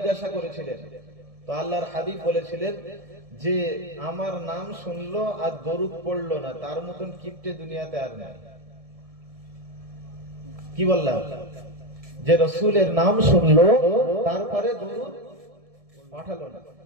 করেছিলেন। তো আল্লাহর হাবিব বলেছিলেন যে আমার নাম শুনলো আর দরুদ পড়লো না, তার মতন কিপ্টে দুনিয়াতে আর নাই। কি বললাম? যে রাসূলের নাম শুনলো তারপরে দরুদ পাঠালো না।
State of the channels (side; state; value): left; late; 1.7 ms